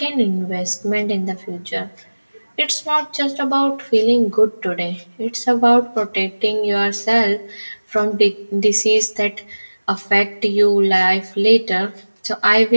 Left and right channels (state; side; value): inverted; both; correlation -1.00